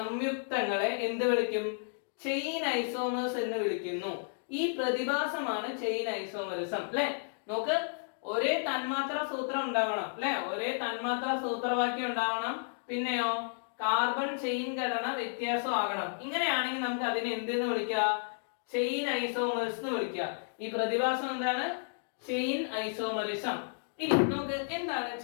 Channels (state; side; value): silent; right; digital silence